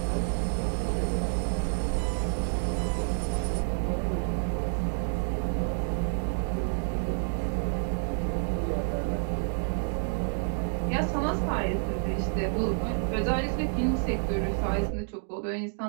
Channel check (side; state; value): left; silent; 58 dB below the other